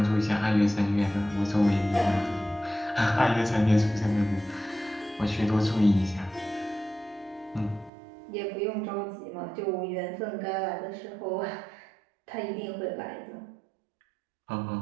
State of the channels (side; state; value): left; drops out; at 7.9 s